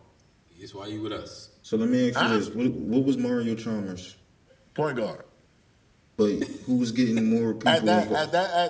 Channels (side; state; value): both; identical; correlation 1.00